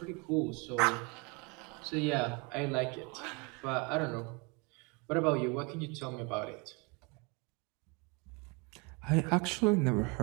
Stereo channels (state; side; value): quieter; left; 30.3 dB